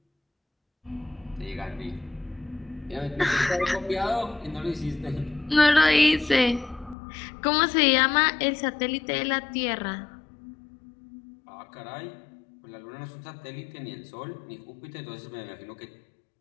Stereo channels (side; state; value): right; drops out; at 7.0 s